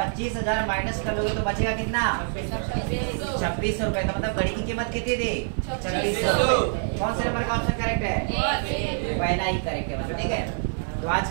माइनस कर लोगे तो बचेगा कितना? 2600 रुपए। तो मतलब घड़ी की कीमत कितनी थी? 2600 रुपए। कौन से नंबर का ऑप्शन करेक्ट है? पहला ही करेक्ट है बच्चों, ठीक है। तो आज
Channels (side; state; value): left; silent; 61 dB below the other